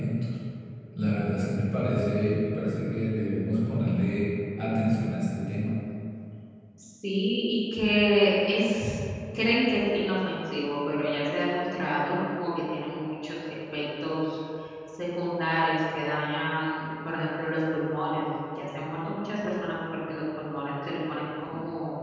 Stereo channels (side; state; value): both; identical; correlation 1.00